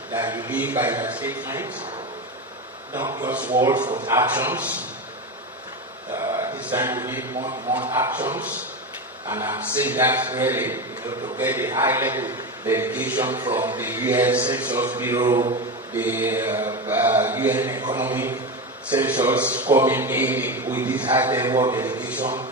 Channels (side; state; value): both; normal; correlation 0.19